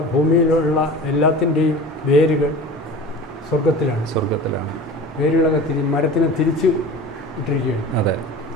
ഭൂമിയിലുള്ള എല്ലാത്തിൻ്റെയും വേരുകൾ സ്വർഗത്തിലാണ്. വേരുകളൊക്കെ മരത്തിനെ തിരിച്ച് ഇട്ടിരിക്കുകയാണ്. അതെ,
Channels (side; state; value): both; normal; correlation 0.37